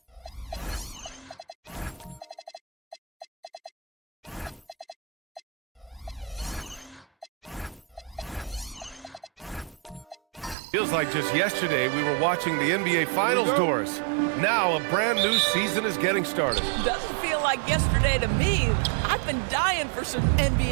Feels like just yesterday we were watching the NBA Finals, Doris. Now a brand new season is getting started. Doesn't feel like yesterday to me. I've been dying for some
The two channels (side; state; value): left; drops out; at 10.6 s